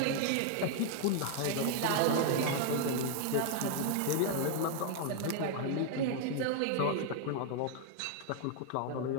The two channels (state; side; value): different; both; correlation 0.00